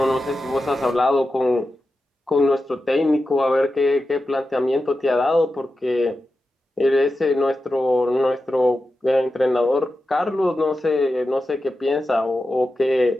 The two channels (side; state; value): both; normal; correlation 0.91